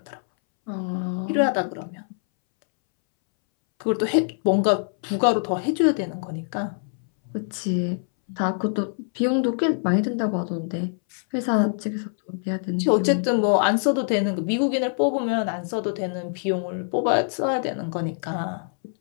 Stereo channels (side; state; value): right; silent; 62 dB below the other